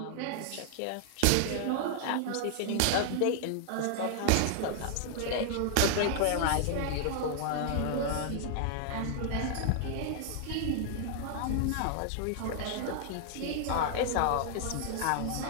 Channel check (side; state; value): both; different; correlation 0.00